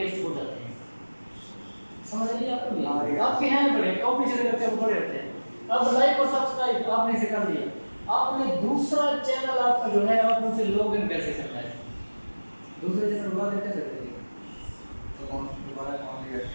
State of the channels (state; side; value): inverted; both; correlation -1.00